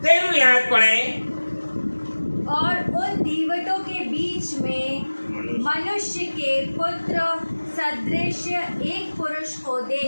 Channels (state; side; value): inverted; both; correlation -1.00